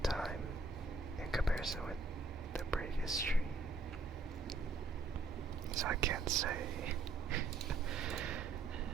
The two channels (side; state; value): left; quieter; 3.9 dB